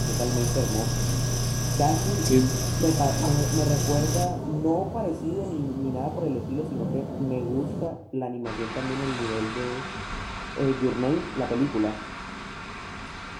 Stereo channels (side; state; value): both; identical; correlation 1.00